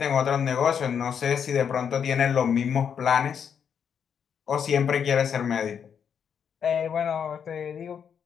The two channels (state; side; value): quieter; right; 7.6 dB